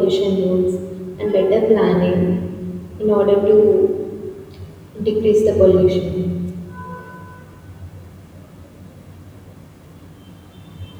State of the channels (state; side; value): identical; both; correlation 1.00